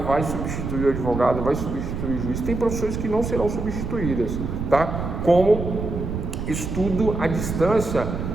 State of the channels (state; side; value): noise; right; rumble, 4 dB below the sound